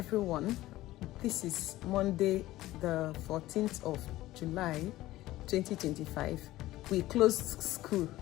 This is Monday, the 14th of July, 2025. We closed school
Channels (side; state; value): right; quieter; 16.3 dB